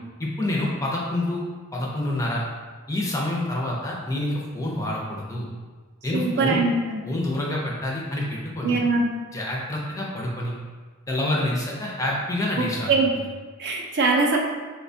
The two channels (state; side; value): normal; both; correlation 0.45